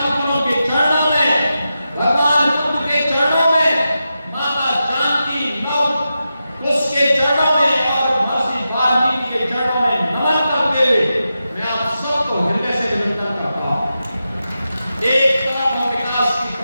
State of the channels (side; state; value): both; inverted; correlation -0.90